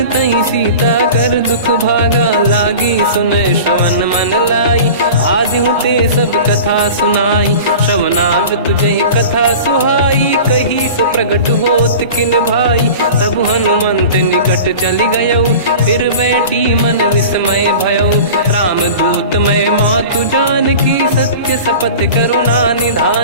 सीता कर दुख भागा, लागी सुनय श्रवण मन लाई। आदि होते सब कथा सुनाई, श्रवणाद तुझे कथा सुहाई। कही से प्रगट होत किन भाई, तब हनुमंत निकट चली गयो। फिर बैठी मन विस्मय भयो, राम दूत मैं मातु जानकी। सत्य शपथ करुणा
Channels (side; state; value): both; inverted; correlation -0.37